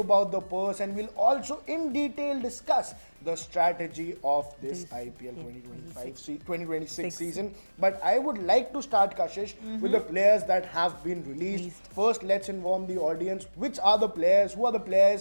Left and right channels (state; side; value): inverted; both; correlation -1.00